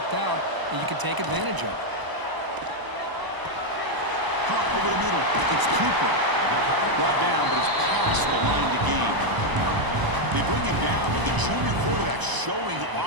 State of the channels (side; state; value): left; late; 1.0 ms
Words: out, and you can take advantage of it. Caught over the middle. It's Cooper. Brought down, but it's past the line to gain. They bring him down, but the junior quarterback showing